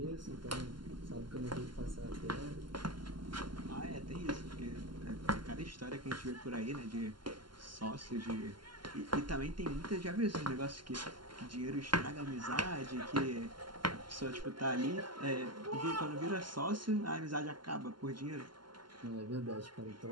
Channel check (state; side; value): late; left; 0.72 ms